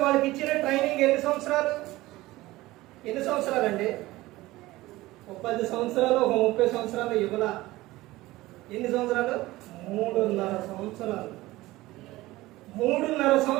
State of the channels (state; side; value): quieter; left; 18.4 dB